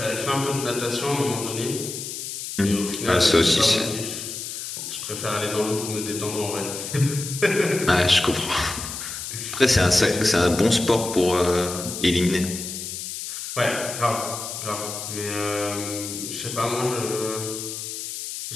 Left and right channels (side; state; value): left; noise; hiss, 7 dB below the sound